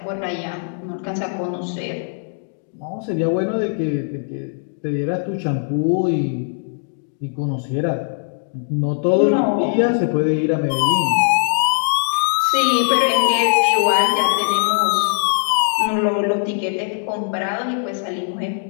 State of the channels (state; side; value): silent; right; digital silence